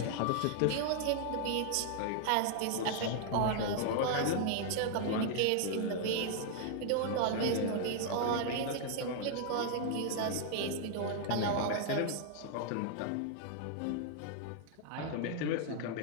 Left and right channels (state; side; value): different; both; correlation 0.00